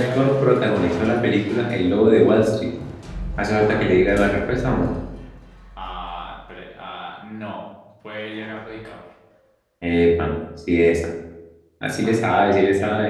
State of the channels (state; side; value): identical; both; correlation 1.00